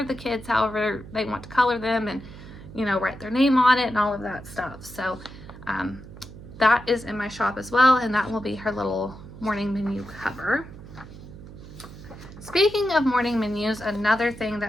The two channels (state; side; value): noise; right; hum, 16 dB below the sound